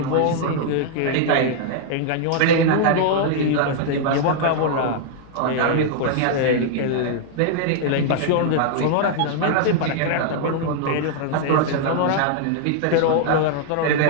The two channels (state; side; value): different; both; correlation -0.01